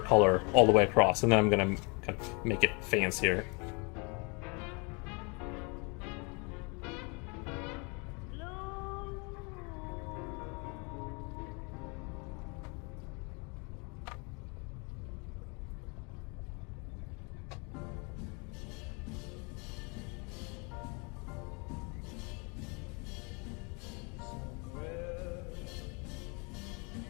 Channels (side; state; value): right; quieter; 31.9 dB